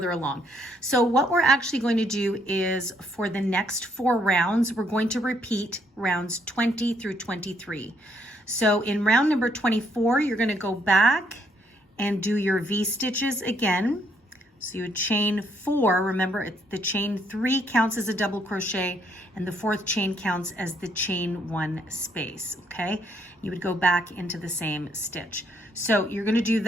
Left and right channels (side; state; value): both; normal; correlation 0.71